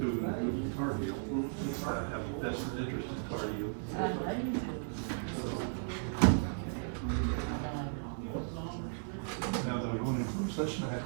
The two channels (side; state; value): left; silent; 54 dB below the other